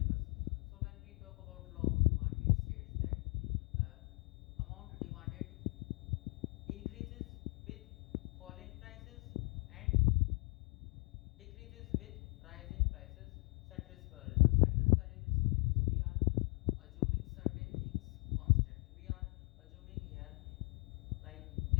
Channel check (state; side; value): quieter; right; 35.9 dB